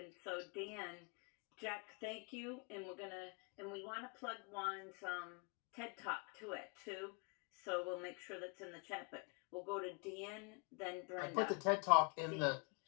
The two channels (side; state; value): right; quieter; 36.0 dB